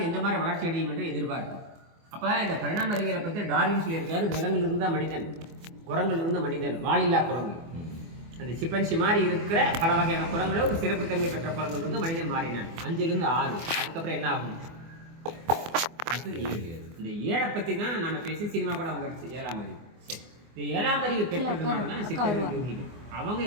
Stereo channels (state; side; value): late; left; 24 ms